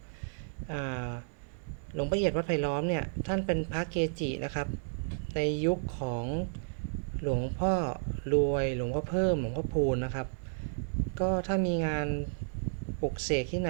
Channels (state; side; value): silent; left; digital silence